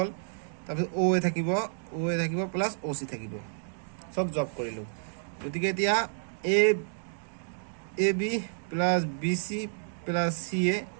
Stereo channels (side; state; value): left; silent; digital silence